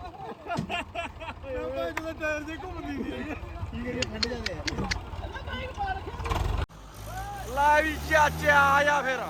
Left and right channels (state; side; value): identical; both; correlation 1.00